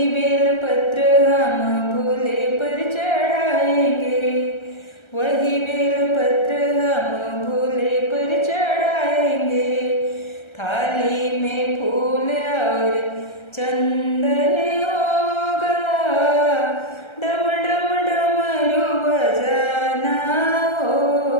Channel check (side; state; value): right; late; 1.3 ms